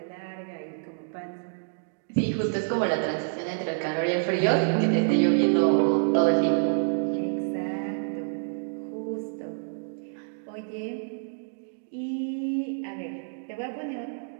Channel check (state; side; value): silent; left; digital silence